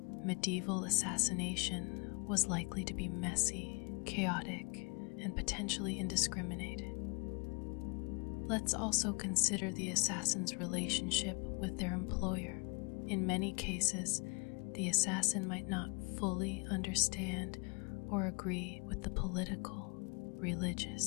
medieval assassination was likely to be messy, chaotic, and potentially indiscriminate. Let's also consider the assassin's relationship with their employer. In many cases, the assassin might not fully understand or agree with the political,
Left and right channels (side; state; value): right; quieter; 33.4 dB